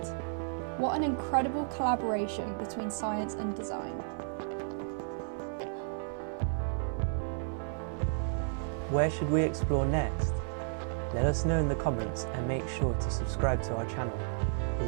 What an incredible collaboration between science and design. Where should we explore next? Let us know in the comments and make sure to subscribe to our channel.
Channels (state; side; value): silent; left; 56 dB below the other